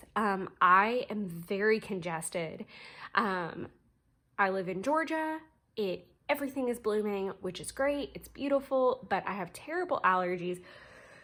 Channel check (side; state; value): both; identical; correlation 1.00